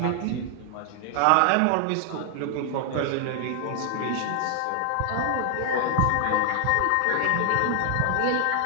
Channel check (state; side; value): different; both; correlation 0.00